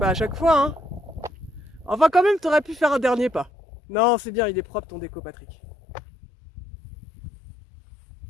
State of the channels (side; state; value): right; drops out; at 3.5 s